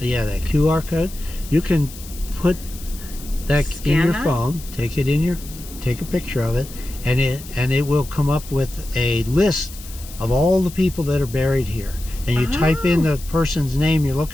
that QR code. You can put that Scan in your that? phone, take a picture of it, and it will come up with a list of all the people that are buried here. And you type in the person's name you're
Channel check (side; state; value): left; noise; hiss, 16 dB below the sound